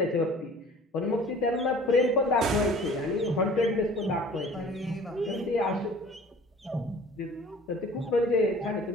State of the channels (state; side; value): normal; both; correlation 0.47